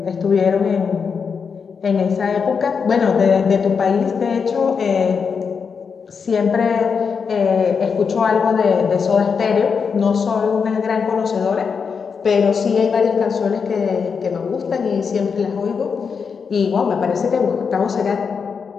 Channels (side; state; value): right; quieter; 5.9 dB